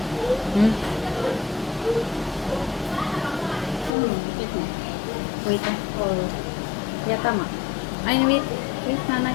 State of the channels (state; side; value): drops out; right; at 3.9 s